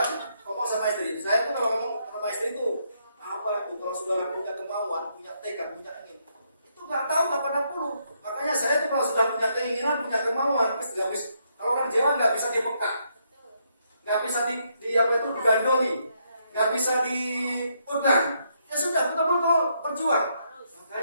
ngomong sama istri. Saya tuh kalau ngomong sama istri itu apa tuh kalau sudah punya kemauan, punya tekad, punya ingin, itu nggak tahu kapan puluh. Makanya saya tuh kalau sudah punya keinginan, punya kemauan, pasti nggak bisa. Kalau orang Jawa nggak bisa dipekak, nggak bisa digandoli, nggak bisa dipegang. Ya sudah, betul-betul berjuang.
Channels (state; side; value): inverted; both; correlation -0.75